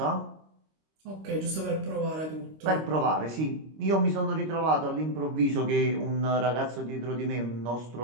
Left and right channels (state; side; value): late; left; 25 ms